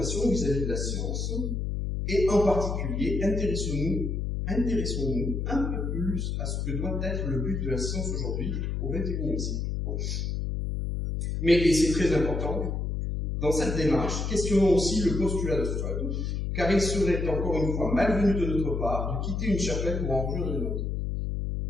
vis-à-vis de la science, et en particulier, intéressons-nous un peu plus à ce que doit être le but de la science aujourd'hui, au XXIe siècle. Mais, et c'est très important, dans cette démarche, questionnons aussi le postulat de Freud, car il serait encore une fois malvenu de notre part de quitter une chapelle pour en rejoindre une autre.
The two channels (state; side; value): noise; left; hum, 1 dB below the sound